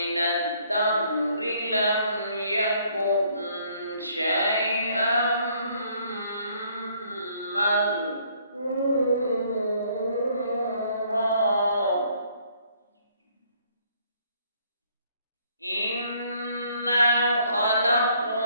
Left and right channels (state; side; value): inverted; both; correlation -0.64